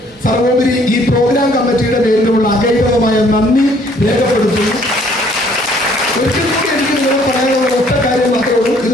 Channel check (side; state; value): both; normal; correlation 0.61